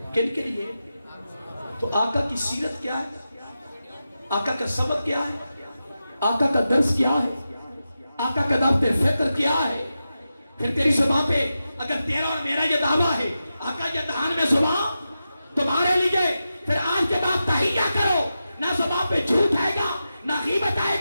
کن کے لیے؟ تو آقا کی سیرت کیا ہے, آقا کا سبق کیا ہے, آقا کا درس کیا ہے, آقا کا دعوت فکر کیا ہے. پھر تیری زبان پہ اگر تیرا اور میرا یہ دعویٰ ہے آقا یہ دہان میں زبان تمہارے لیے, پھر آج کے بعد تحیہ کرو, نہ زبان پہ جھوٹ آئے گا, نہ غیبت آئے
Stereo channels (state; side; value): inverted; both; correlation -0.91